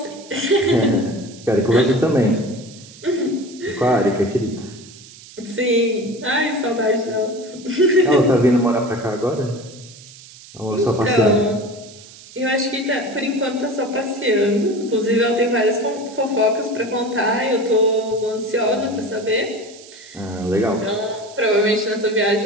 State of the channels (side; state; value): right; noise; hiss, 20 dB below the sound